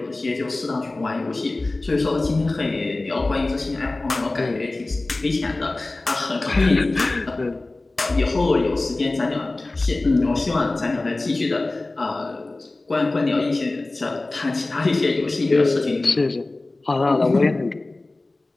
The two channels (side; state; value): right; quieter; 3.0 dB